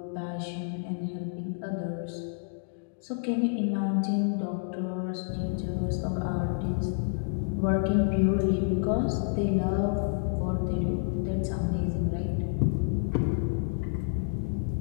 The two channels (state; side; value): silent; right; digital silence